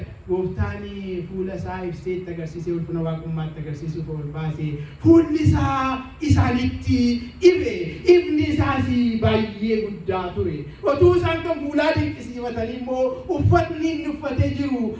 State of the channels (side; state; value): both; identical; correlation 1.00